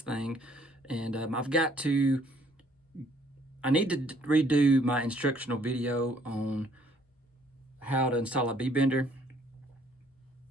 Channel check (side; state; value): both; normal; correlation 0.63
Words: thing and I need to redo my instructional video on how to install a B-bender,